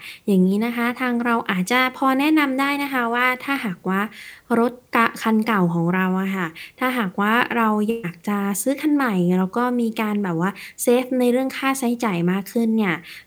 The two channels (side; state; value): both; identical; correlation 1.00